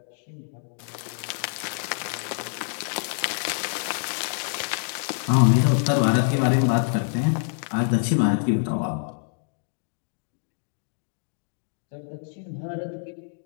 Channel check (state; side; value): silent; right; 61 dB below the other